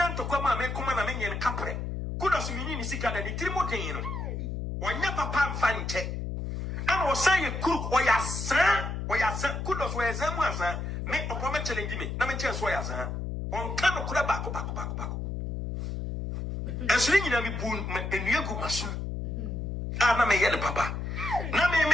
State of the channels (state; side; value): noise; left; hum, 4 dB below the sound